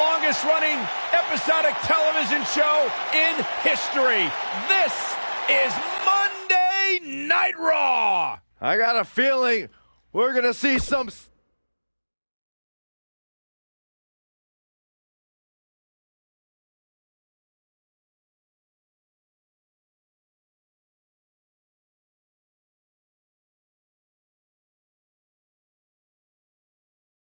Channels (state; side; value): inverted; both; correlation -1.00